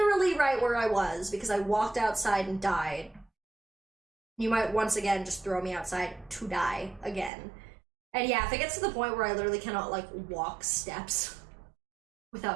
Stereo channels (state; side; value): drops out; left; at 7.3 s